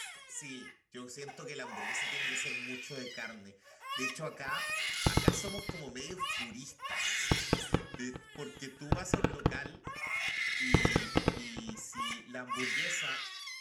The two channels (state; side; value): identical; both; correlation 1.00